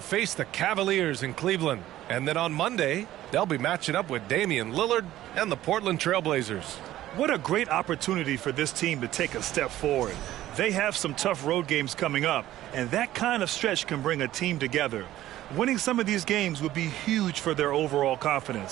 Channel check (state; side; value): quieter; left; 14.1 dB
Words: face the Cavaliers in Cleveland. And then on Monday, they'll be matching up with Damian Lillard and the Portland Trailblazers. What a great opportunity for this team to take a step forward. They have some tough road games coming up, and that kind of stretch can bring a team together. Winning some of these games would be huge for their overall